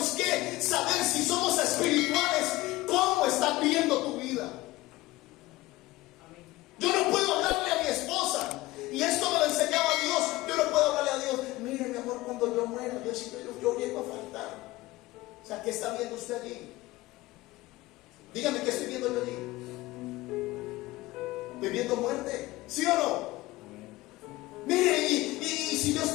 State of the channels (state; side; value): quieter; right; 19.0 dB